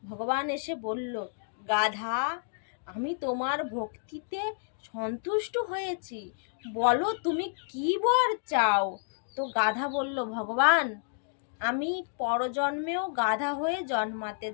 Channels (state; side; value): silent; right; digital silence